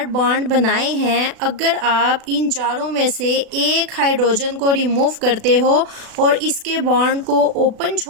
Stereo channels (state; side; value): late; left; 36 ms